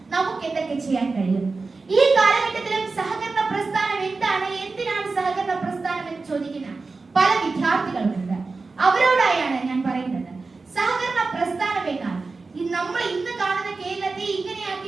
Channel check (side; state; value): left; quieter; 4.0 dB